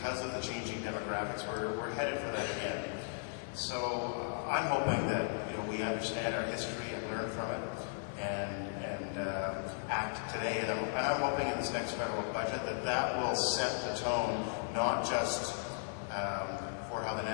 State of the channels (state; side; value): silent; right; 54 dB below the other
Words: of the changing demographics, we're headed for that again. So I'm hoping that we understand our history and learn from it and act today. And I'm hoping in this next federal budget that will set the tone, not just for how the